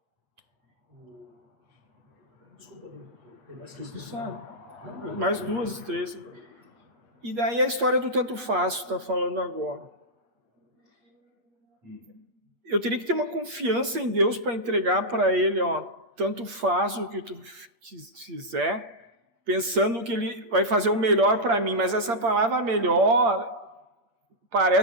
Desculpa, tem mais Tu sabe. Mais 2, 3. E daí a história do tanto faz, tu tá falando agora. Eu teria que ter uma confiança em Deus para entregar para Ele, tanto faz o que tu fizer, pensando que Ele vai fazer o melhor para mim. Mas essa palavra melhor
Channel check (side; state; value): left; late; 8.4 ms